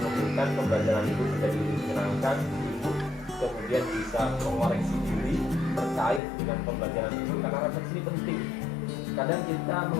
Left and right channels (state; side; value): drops out; right; at 6.2 s